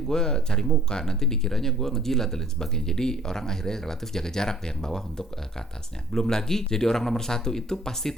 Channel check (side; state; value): both; normal; correlation 0.56